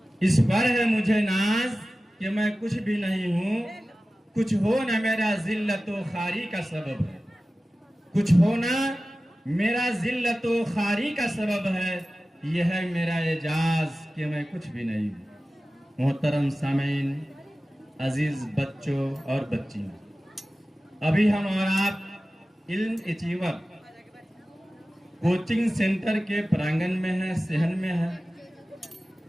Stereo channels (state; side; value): normal; both; correlation 0.96